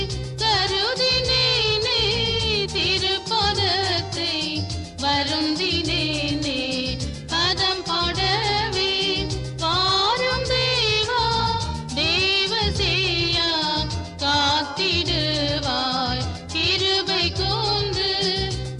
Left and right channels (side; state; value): both; identical; correlation 1.00